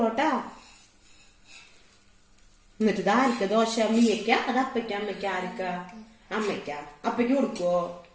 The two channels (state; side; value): identical; both; correlation 1.00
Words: എന്നിട്ട് ഇത് ആർക്ക ദോശ? മീയക്ക? അത് അപ്പയ്ക്ക അമ്മയ്ക്ക? ആർക്ക? അമ്മയ്ക്ക. അപ്പയ്ക്ക് കൊടുക്കുവോ?